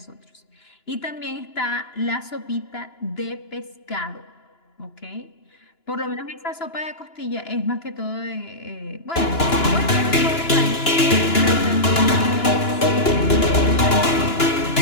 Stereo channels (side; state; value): right; late; 2.9 ms